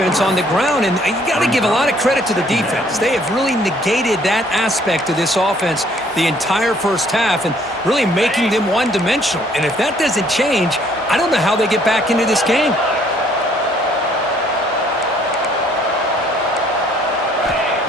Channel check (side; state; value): both; normal; correlation 0.62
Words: on the ground, and you got to give a lot of credit to the defense. They have really negated that aspect of this offense the entire first half and really making them one-dimensional. And if that doesn't change, I don't know how they get back into this game.